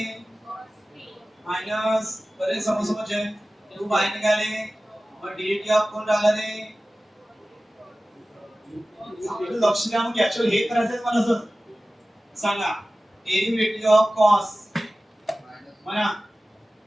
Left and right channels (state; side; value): normal; both; correlation 0.96